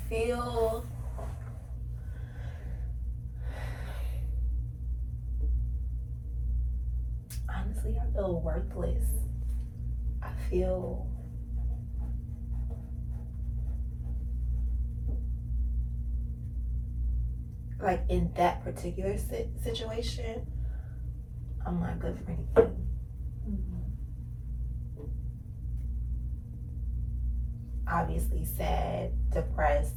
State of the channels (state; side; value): identical; both; correlation 1.00